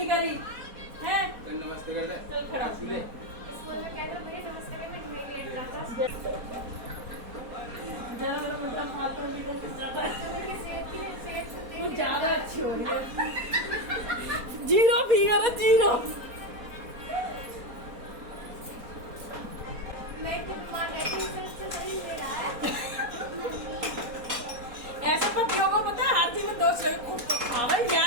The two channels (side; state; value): left; late; 4.2 ms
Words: करी है? नमस्ते कर ले, चल खड़ा। स्कूल में कहता मुझे नमस्ते में तुम्हें लेट जाता। जरा मेरा मतलब फालतू की कोई ज्यादा सेहत वो ज्यादा अच्छी हो रही है। जीरो फिगर है, जीरो। मैं तो बीमार रहती हूँ, इससे शरीर ले रहा है। ऐसे पतियों को पता है हर चीज में दोस्त